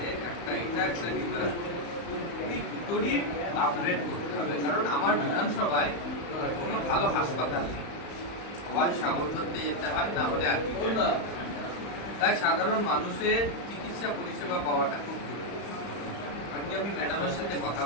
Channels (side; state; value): right; late; 35 ms